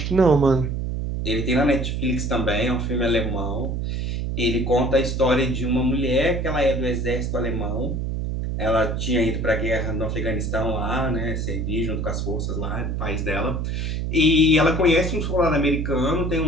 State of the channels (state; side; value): noise; right; hum, 2 dB below the sound